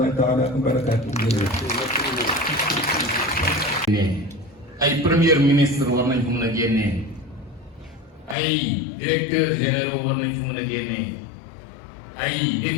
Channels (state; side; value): drops out; right; at 8.3 s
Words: taala wa barakaatu. ay premier ministre war nañ ko mën a génnee ay directeurs généraux war nañ ko mën a génnee ay